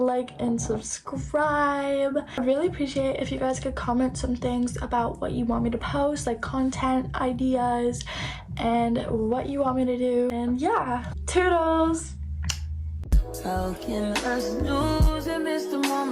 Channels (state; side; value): identical; both; correlation 1.00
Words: and subscribe. I really appreciate if you guys could comment some things about what you want me to post, like content ideas and what you want me to do. And yeah, toodles! How can us lose and miss the